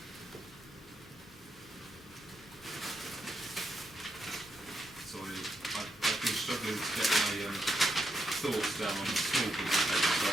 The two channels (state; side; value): normal; both; correlation 0.82